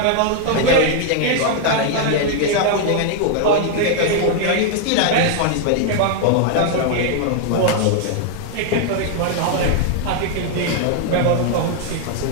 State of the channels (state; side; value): different; both; correlation 0.00